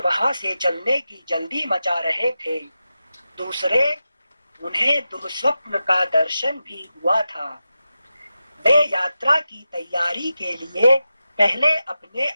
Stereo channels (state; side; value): inverted; both; correlation -0.91